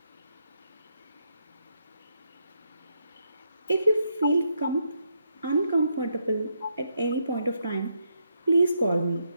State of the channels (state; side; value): inverted; both; correlation -0.79